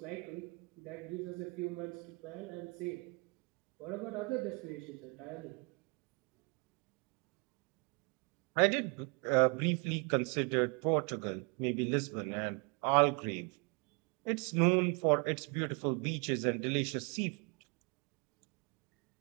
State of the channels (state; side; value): quieter; left; 32.9 dB